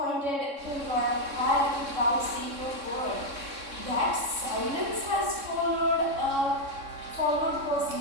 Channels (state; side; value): late; left; 3.6 ms